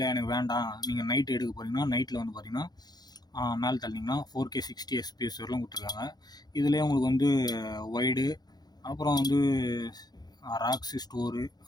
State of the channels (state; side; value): late; right; 0.19 ms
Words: எனக்கு வேண்டாம், நீங்கள் நைட் எடுக்க போகிறீங்கன்னா நைட்டில் வந்து பார்த்திங்கன்னா மேலே தள்ளிங்கன்னா 4K 60 FPS வரலாம் கொடுத்துருக்காங்க. இதுலேயே உங்களுக்கு வந்து வைடு, அப்புறம் வந்து ராக்ஸு ஸ்டோரு,